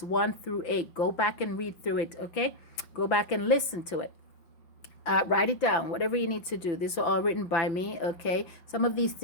1 through 8. Go back and read through it. Okay, go back and listen to it. Write it down, whatever you need to do. These are all written by me, okay? Some of these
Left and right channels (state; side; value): late; right; 5.9 ms